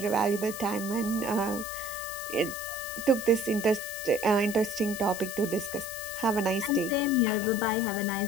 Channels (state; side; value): noise; left; hiss, 10 dB below the sound